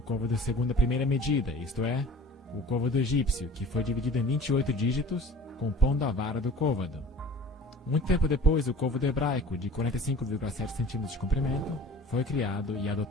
segundo a primeira medida, isto é, o côvado egípcio, que foi dividido em 28 dígitos, compondo a vara do côvado. Muito tempo depois, o côvado hebraico, de 45,7 centímetros de comprimento, foi criado e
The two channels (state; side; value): normal; both; correlation 0.43